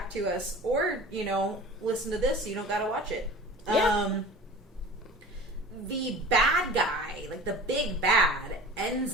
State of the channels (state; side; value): normal; both; correlation 0.40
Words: to us, or, you know, listen to this so you don't got to watch it. Yeah. The bad guy, like, the big bad, ends